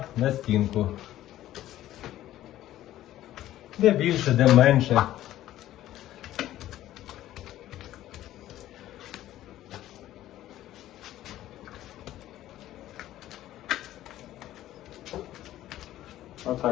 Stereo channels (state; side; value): quieter; right; 13.7 dB